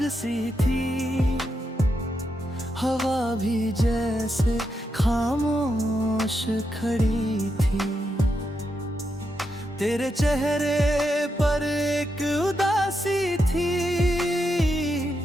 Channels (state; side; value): normal; both; correlation 0.84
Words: सी थी, हवा भी जैसे खामोश खड़ी थी। तेरे चेहरे पर एक उदासी थी,